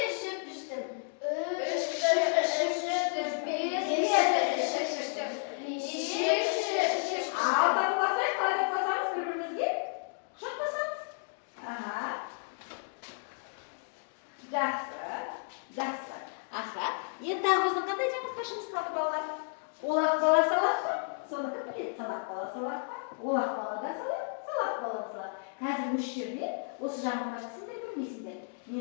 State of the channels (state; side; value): silent; right; 56 dB below the other